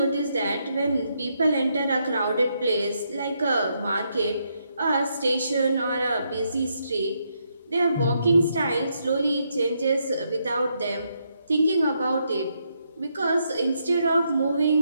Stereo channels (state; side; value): inverted; both; correlation -0.78